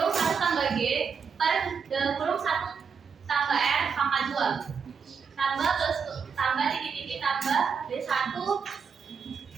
1 tambah G per dalam kurung 1 tambah R pangkat 2 tambah terus tambah titik-titik tambah D1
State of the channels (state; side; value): quieter; left; 6.1 dB